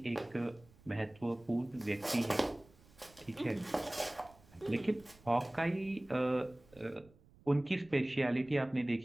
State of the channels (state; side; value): noise; right; rumble, 26 dB below the sound